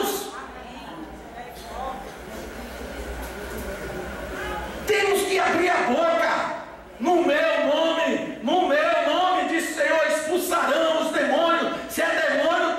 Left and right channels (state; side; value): identical; both; correlation 1.00